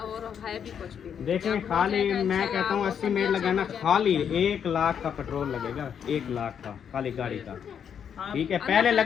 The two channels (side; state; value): right; quieter; 8.0 dB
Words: है भी कुछ भी नहीं। देखें, जब हो खाली जाएगा मैं इंशाल्लाह कहता हूँ वो 80 सब मिनट अच्छा लगाना, हो जाएगा। खाली 1 लाख का पेट्रोल लगेगा, 1 लाख का खाली गाड़ी का, हाँ, ठीक है। पहले